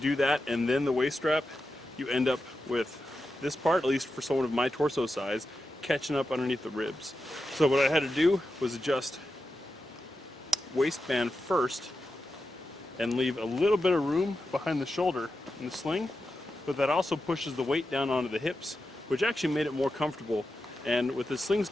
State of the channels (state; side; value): normal; both; correlation 0.90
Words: that and then the waist strap, you end up with this part, at least for someone of my torso size, catching up underneath the ribs. So what I had to do was adjust waistband first and leave a little bit of room behind the shoulder in the sling, but that also pushes the weight down onto the hips, which actually made it more comfortable. And with the sling